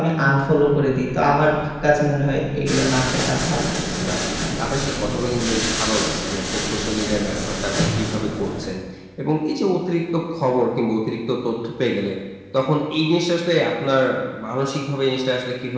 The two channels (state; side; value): identical; both; correlation 1.00